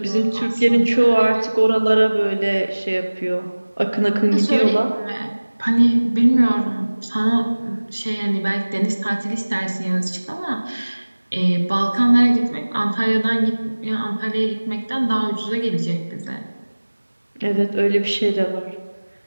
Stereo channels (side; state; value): both; inverted; correlation -1.00